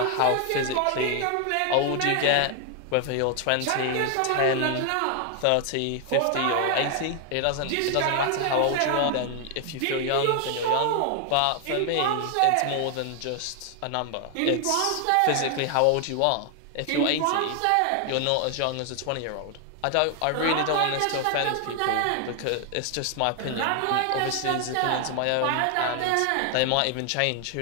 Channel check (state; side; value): different; both; correlation 0.00